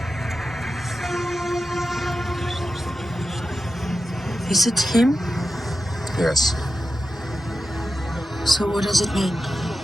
Is it him? Yes. So what does it mean?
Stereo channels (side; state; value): both; normal; correlation 0.90